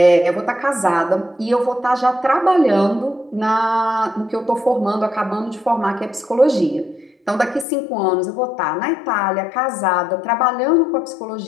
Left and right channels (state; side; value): drops out; right; at 7.7 s